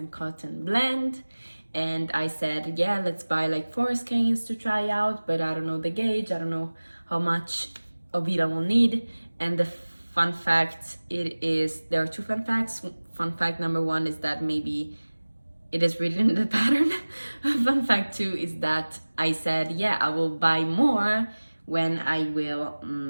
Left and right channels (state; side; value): inverted; both; correlation -1.00